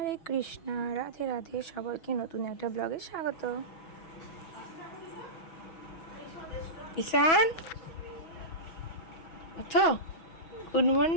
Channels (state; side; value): late; right; 6.1 ms